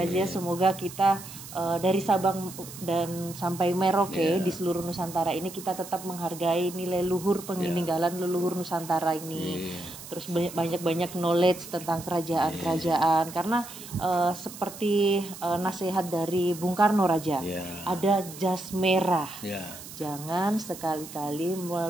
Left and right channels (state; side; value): noise; right; hiss, 14 dB below the sound